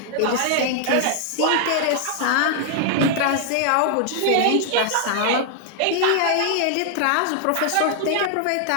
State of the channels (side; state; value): both; different; correlation 0.00